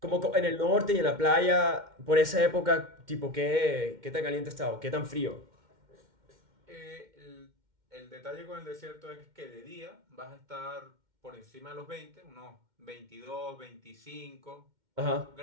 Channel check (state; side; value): late; left; 2.1 ms